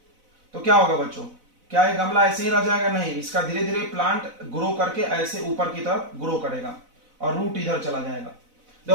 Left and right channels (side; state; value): left; late; 4.0 ms